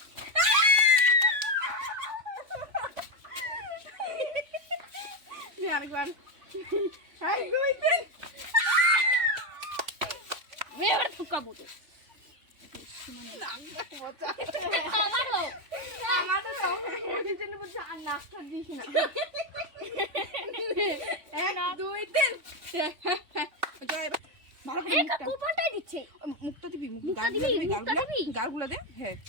নে আরেকবার 1 2 3 এবার ঠকাবো তো আমারও আমাদের সব মুরগির জন্য বলছে আর নাস্তা দিস না 1 2 3 জয় ভালো করে এই কপালটাই দিচ্ছে মুখটা দিবি মুখটা দিবি, মুখটা দিবি? গালগুলো দে হ্যাঁ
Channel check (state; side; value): late; left; 3.5 ms